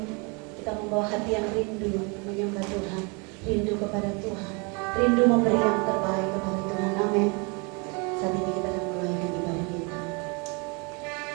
Kita membawa hati yang rindu menyembah Tuhan, rindu kepada Tuhan, rindu memberi yang terbaik kepada Tuhan. Amin. Saat ini kita akan mulai ibadah kita.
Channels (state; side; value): quieter; left; 31.4 dB